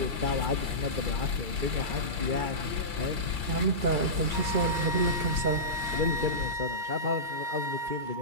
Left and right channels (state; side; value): late; left; 2.3 ms